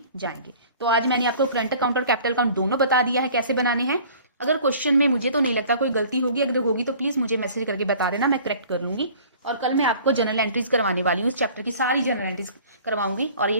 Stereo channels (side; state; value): both; inverted; correlation -0.49